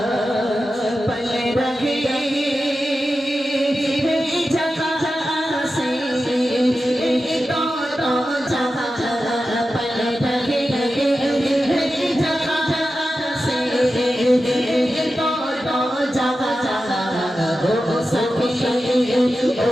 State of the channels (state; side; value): normal; both; correlation 0.92